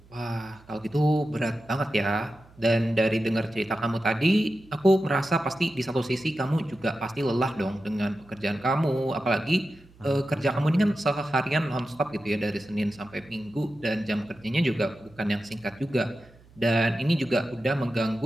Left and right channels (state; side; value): noise; right; hum, 26 dB below the sound